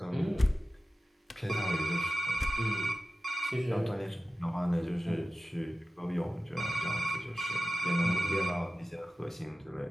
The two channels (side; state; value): both; normal; correlation 0.95